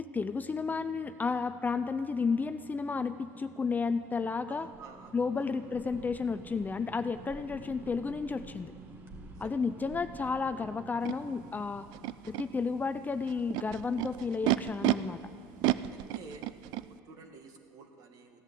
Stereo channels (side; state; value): both; normal; correlation 0.66